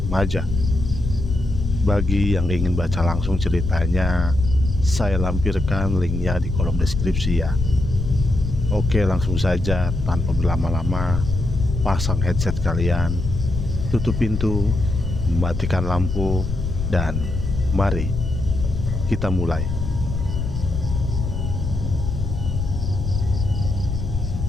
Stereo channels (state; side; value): noise; left; rumble, 3 dB below the sound